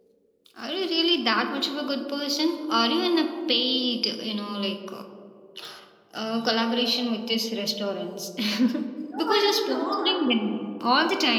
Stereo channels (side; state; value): both; identical; correlation 1.00